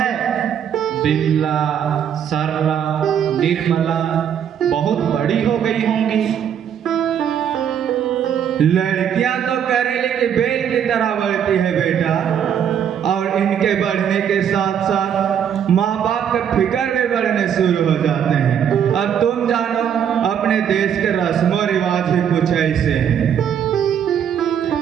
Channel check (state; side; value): quieter; left; 8.7 dB